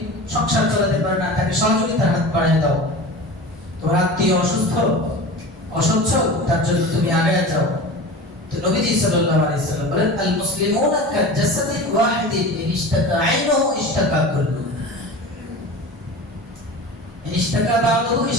সংসার চালাতে পারে না, তাকে সহযোগিতার হাত বাড়িয়ে দাও। তোমার আত্মীয় অসচ্ছল, তার জন্য তুমি আগে যাও। তো নবীজি সাল্লাল্লাহু আলাইহি সাল্লাম বলেন, আল মুসলিমুনা কাজাসাদিন ওয়াহিদিন ইশতাকা আইনুহু ইশতাকা কুল্লু, ইশতাকা বা'দুহু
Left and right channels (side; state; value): both; normal; correlation 0.33